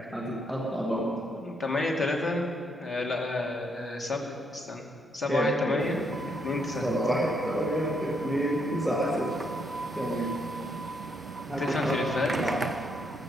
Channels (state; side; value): normal; both; correlation 0.74